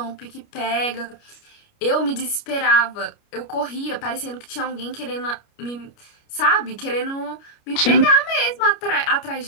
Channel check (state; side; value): late; right; 29 ms